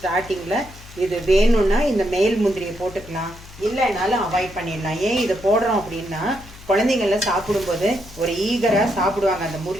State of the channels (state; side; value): noise; left; hum, 19 dB below the sound